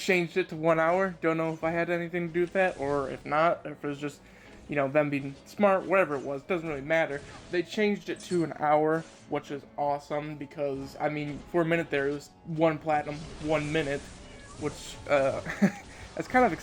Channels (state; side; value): identical; both; correlation 1.00